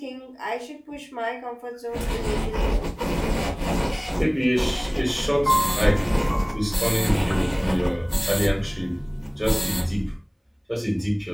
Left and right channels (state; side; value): identical; both; correlation 1.00